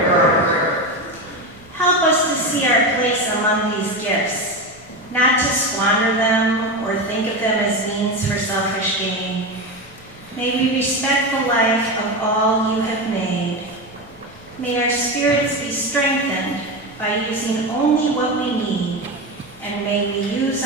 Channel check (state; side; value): noise; left; rumble, 28 dB below the sound